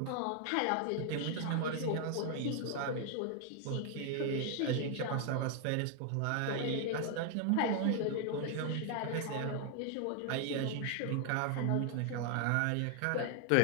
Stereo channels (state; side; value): different; both; correlation 0.00